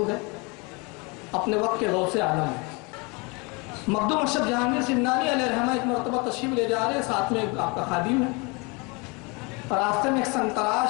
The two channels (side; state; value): right; quieter; 29.2 dB